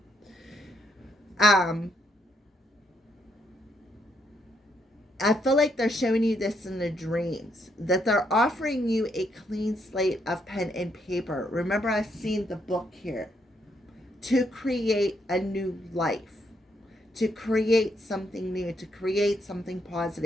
I feel like they're showing you this in the dreams, that they're offering you a clean slate of pen and paper. Remember, I've seen the book here. To create a new life, to create something new, to create something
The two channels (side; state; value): both; normal; correlation 0.74